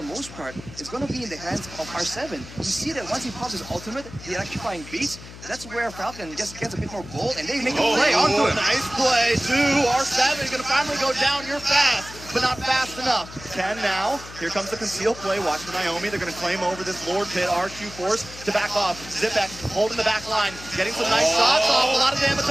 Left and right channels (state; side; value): noise; left; hum, 15 dB below the sound